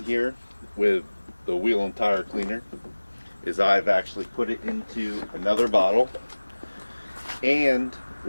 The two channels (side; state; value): both; inverted; correlation -1.00